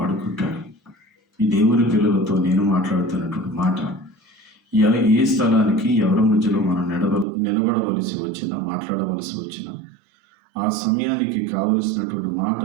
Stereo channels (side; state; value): left; drops out; at 7.2 s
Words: ఈ దేవుని పిల్లలతో నేను మాట్లాడుతున్నటువంటి మాట, ఏ స్థలానికి ఎవరి మధ్యలో మనం నిలబడవలసి వచ్చినా, మాట్లాడవలసి వచ్చినా ఆ సమయానికి కావలసినటువంటి